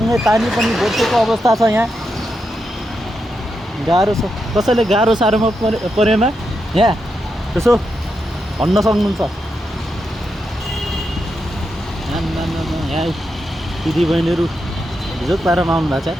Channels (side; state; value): both; normal; correlation 0.85